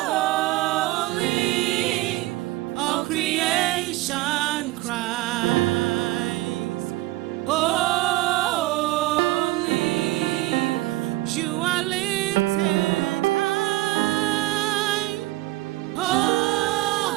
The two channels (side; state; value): left; quieter; 18.6 dB